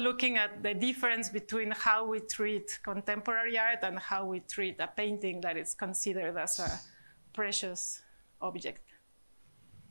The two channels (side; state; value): both; inverted; correlation -1.00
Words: at the difference between how we treat contemporary art and how we treat a painting that is considered as a precious object.